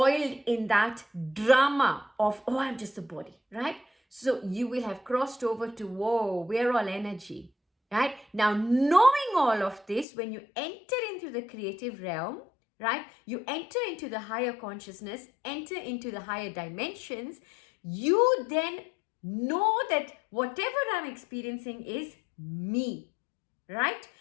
in that drama of, oh, I'm just a body, right? So you will have crossed over to, whoa, we're all energy, right? Now, knowing all of this, when you enter into the creative realm, right? You enter into the higher consciousness, enter into the higher dimensions, you then know that whatever I'm experiencing is me, right?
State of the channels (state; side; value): drops out; right; at 10.1 s